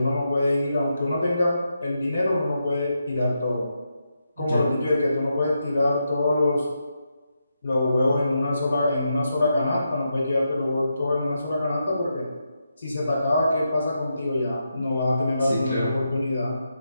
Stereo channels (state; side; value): inverted; both; correlation -0.85